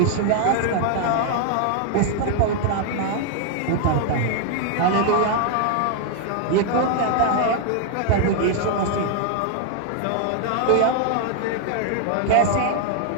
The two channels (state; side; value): different; both; correlation 0.00